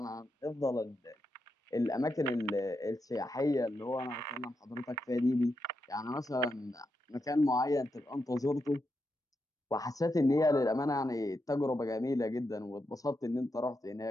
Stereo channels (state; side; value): normal; both; correlation 0.85